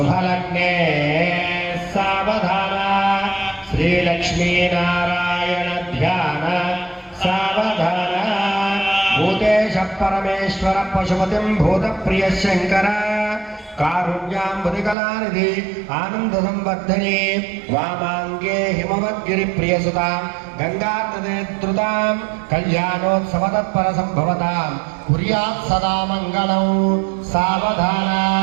सावधान श्रीलक्ष्मीनारायण ध्यान सावधान भूतेश परमेश्वर पशुपतिं भूतप्रिय शंकर कारुण्याम्बुदिकलानिधि आनंद संवर्धने वामांगे हिमवद्गिरिप्रियसुतां गंगानदीद्रुतां कल्याणोत्सवतत्पर संभवतां कुर्यात् सदा मंगलं सावधान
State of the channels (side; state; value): left; drops out; at 15.0 s